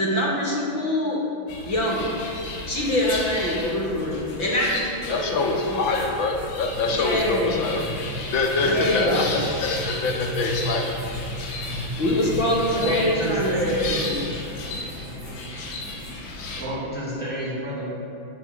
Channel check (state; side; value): late; right; 6.0 ms